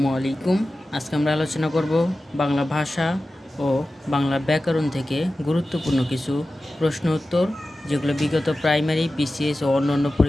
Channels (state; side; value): normal; both; correlation 0.95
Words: আলাইকুম। আজকে আমরা আলোচনা করব বাংলা ভাষা ও বাংলা ব্যাকরণ থেকে গুরুত্বপূর্ণ কিছু প্রশ্ন উত্তর, যেগুলো বিগত প্রাইমারি, বিসিএস ও অন্যান্য